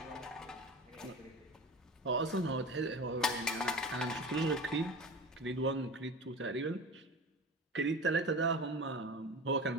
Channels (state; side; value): normal; both; correlation 0.32